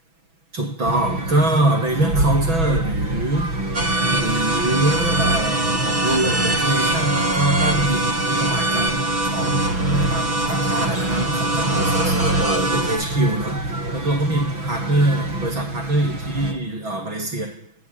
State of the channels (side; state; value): left; late; 6.1 ms